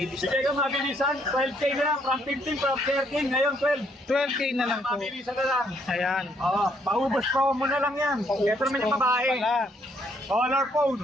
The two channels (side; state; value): both; normal; correlation 0.69